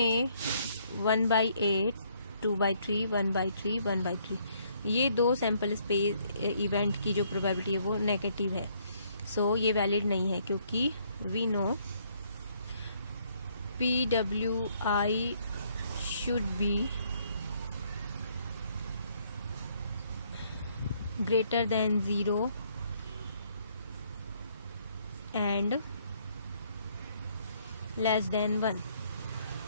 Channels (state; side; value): inverted; both; correlation -0.67